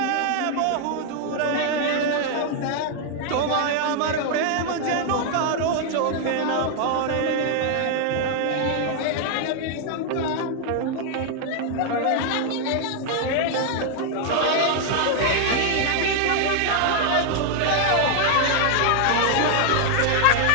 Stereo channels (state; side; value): different; both; correlation 0.00